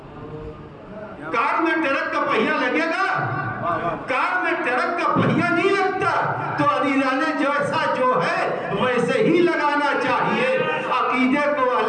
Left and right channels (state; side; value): identical; both; correlation 1.00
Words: کار میں ٹرک کا پہیا لگے گا؟ کار میں ٹرک کا پہیا نہیں لگتا۔ تو عزیزانے جیسا جو ہے ویسے ہی لگانا چاہیے، عقیدے کو